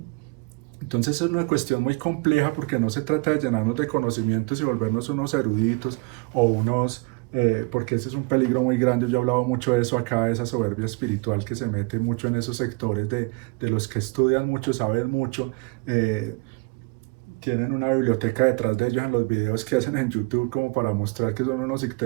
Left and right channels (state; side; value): quieter; left; 29.9 dB